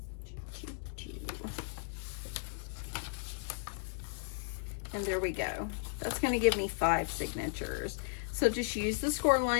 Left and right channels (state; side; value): silent; right; digital silence